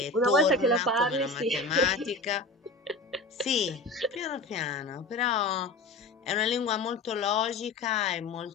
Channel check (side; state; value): right; quieter; 3.2 dB